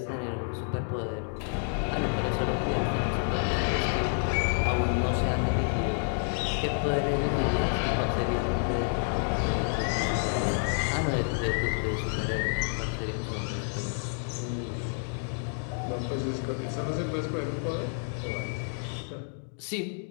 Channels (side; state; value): right; silent; 58 dB below the other